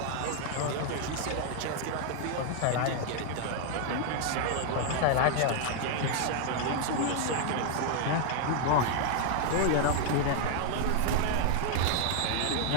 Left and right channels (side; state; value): both; different; correlation 0.00